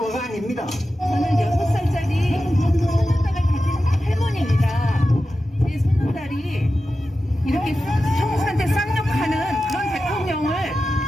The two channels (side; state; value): both; normal; correlation 0.93